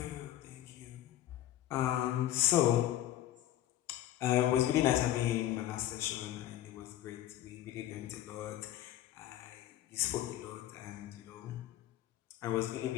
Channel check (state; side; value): quieter; right; 13.0 dB